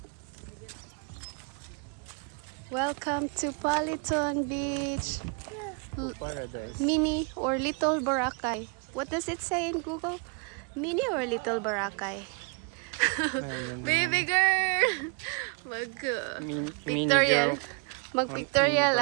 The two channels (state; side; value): quieter; left; 34.5 dB